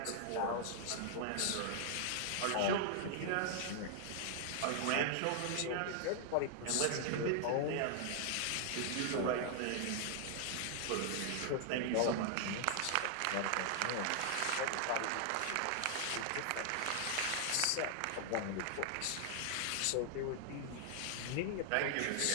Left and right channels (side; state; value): both; different; correlation 0.00